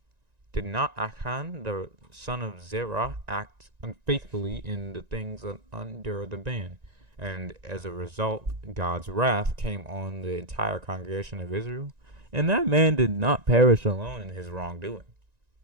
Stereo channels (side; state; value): left; late; 1.9 ms